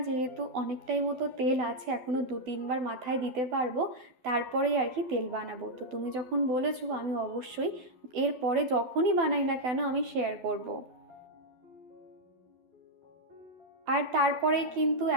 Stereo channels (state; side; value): late; left; 12 ms